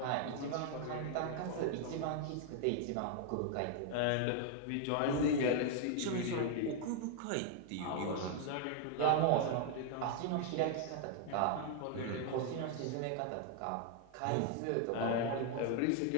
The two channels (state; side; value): different; both; correlation 0.00